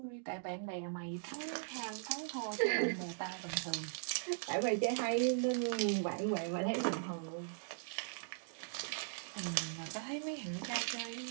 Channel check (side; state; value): left; silent; digital silence